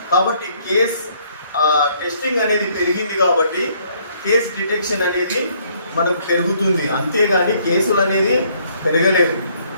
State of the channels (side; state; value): both; inverted; correlation -0.65